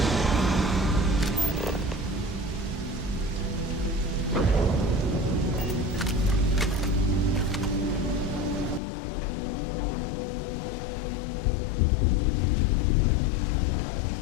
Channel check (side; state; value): right; drops out; at 8.8 s